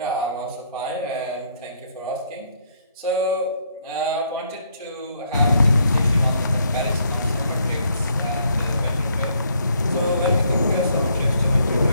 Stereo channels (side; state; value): both; inverted; correlation -0.70